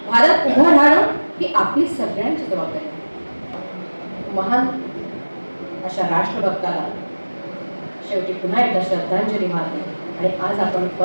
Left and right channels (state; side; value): inverted; both; correlation -1.00